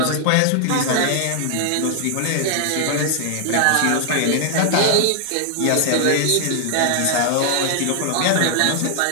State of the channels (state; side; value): different; both; correlation 0.00